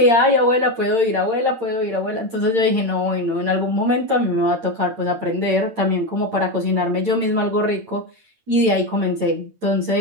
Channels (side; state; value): left; late; 8.8 ms